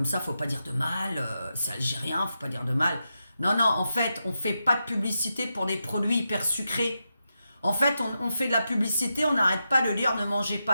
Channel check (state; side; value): inverted; both; correlation -0.87